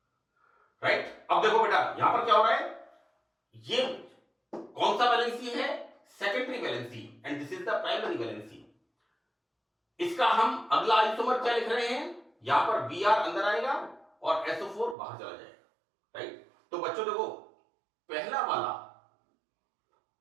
राइट। अब देखो बेटा यहां पर क्या हो रहा है, ये कौन सा वैलेंसी है, secondary valency, and this is the primary valency. इसका हम अगला आइसोमर क्या लिख रहे हैं, यहां पर Br अंदर आएगा और SO4 बाहर चला जाएगा, राइट। तो बच्चों देखो पहला वाला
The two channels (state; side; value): drops out; left; at 15.0 s